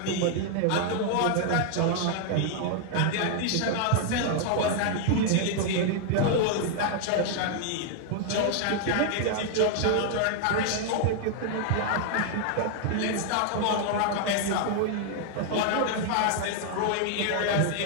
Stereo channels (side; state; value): both; different; correlation 0.00